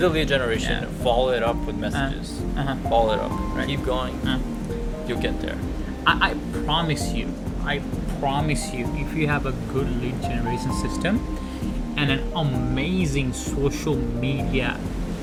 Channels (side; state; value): both; identical; correlation 1.00